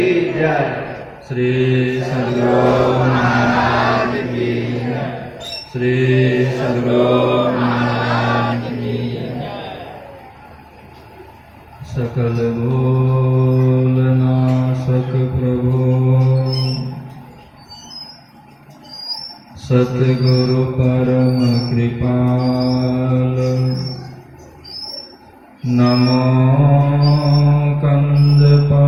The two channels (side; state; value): both; identical; correlation 1.00